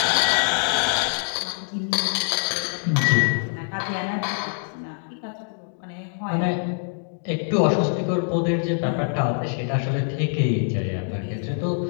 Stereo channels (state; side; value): silent; right; digital silence